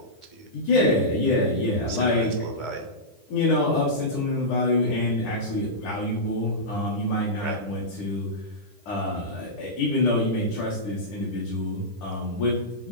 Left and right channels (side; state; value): right; late; 10 ms